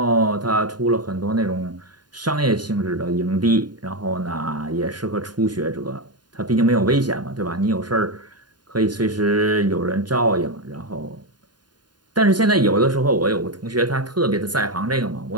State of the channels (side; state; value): left; late; 0.70 ms